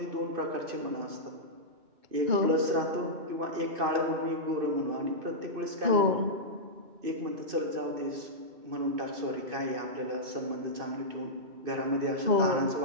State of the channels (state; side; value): late; left; 2.6 ms